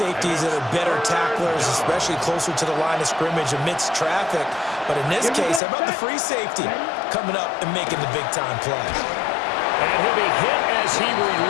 that are better tacklers, especially closer to the line of scrimmage amidst traffic. But in this case, how about the free safety coming up and making the big-time play? And he'll be hit as he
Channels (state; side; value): drops out; right; at 5.6 s